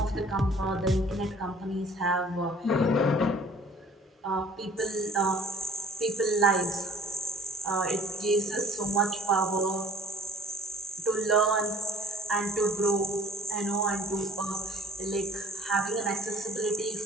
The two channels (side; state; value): both; normal; correlation 0.51